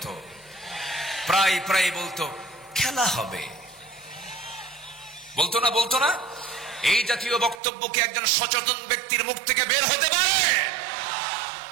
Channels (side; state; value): left; drops out; at 7.6 s